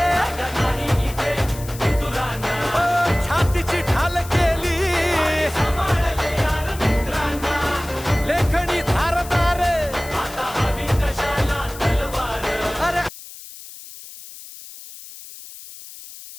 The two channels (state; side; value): noise; left; hiss, 15 dB below the sound